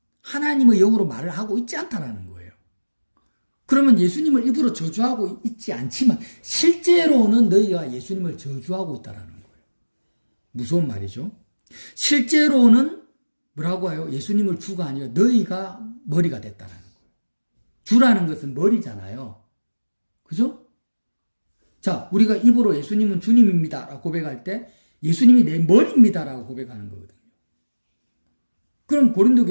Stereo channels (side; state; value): both; inverted; correlation -1.00